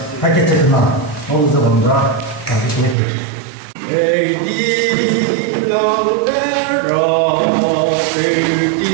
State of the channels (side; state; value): left; drops out; at 3.0 s